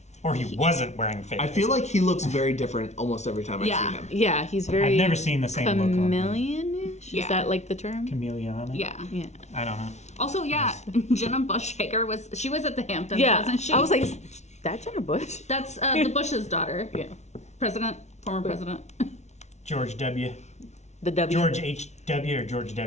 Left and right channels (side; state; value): right; late; 0.32 ms